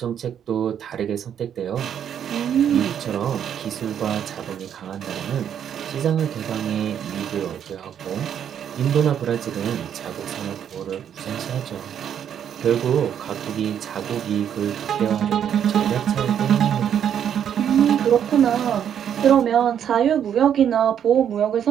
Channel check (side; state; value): left; quieter; 9.0 dB